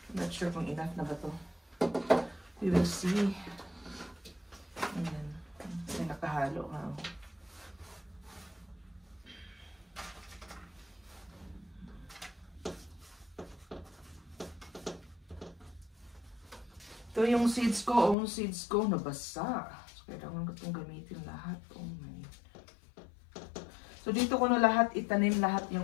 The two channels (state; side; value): drops out; right; at 18.2 s